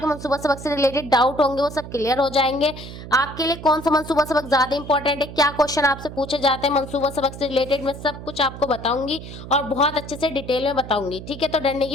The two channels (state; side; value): noise; right; hum, 12 dB below the sound